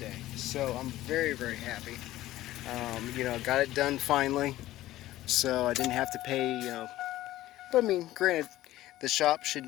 So I'm very happy. Got it done finally. So I didn't have to pay, but I mean, granted, the shop should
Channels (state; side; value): quieter; right; 15.4 dB